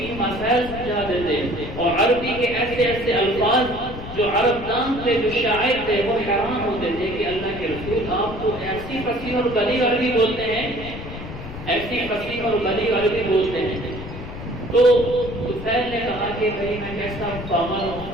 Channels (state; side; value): noise; left; rumble, 11 dB below the sound